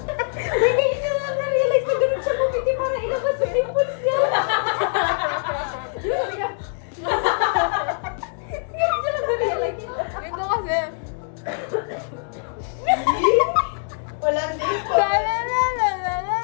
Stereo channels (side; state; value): right; silent; digital silence